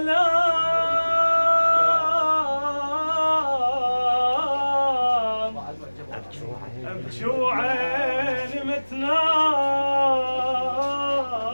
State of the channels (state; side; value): inverted; both; correlation -1.00